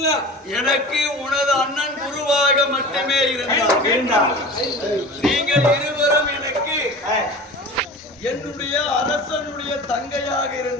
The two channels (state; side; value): normal; both; correlation 0.36